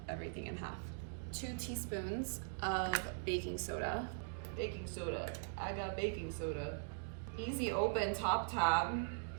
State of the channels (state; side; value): silent; left; digital silence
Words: everything in half. 2 teaspoons of baking soda. Baking soda. I got baking soda. Easy open top tab.